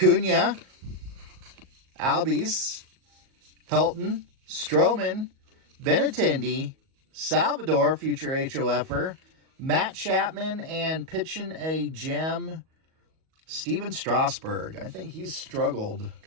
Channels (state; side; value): late; left; 38 ms